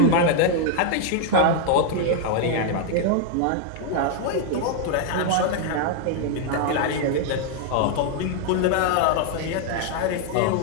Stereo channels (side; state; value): both; different; correlation 0.00